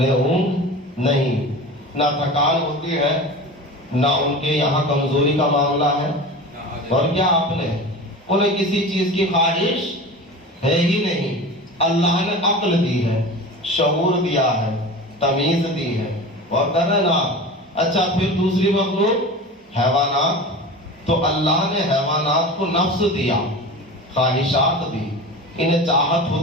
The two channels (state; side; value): normal; both; correlation 0.33